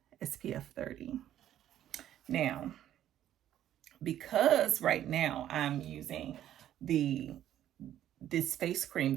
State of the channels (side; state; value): left; quieter; 11.7 dB